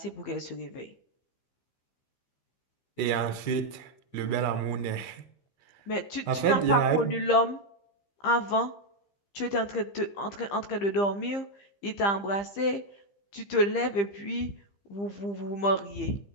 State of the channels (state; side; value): late; right; 15 ms